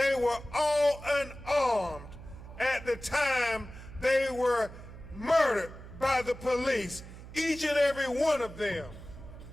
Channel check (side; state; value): right; noise; hum, 15 dB below the sound